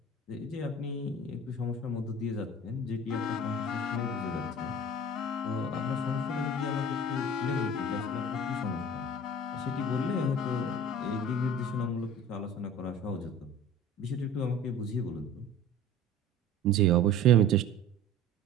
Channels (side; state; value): both; normal; correlation 0.40